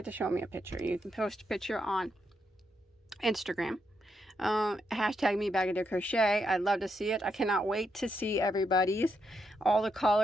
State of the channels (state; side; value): normal; both; correlation 0.81